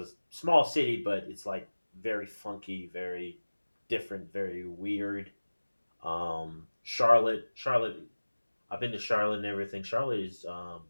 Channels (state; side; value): inverted; both; correlation -1.00